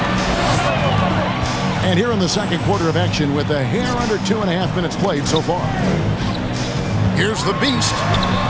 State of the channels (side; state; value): both; identical; correlation 1.00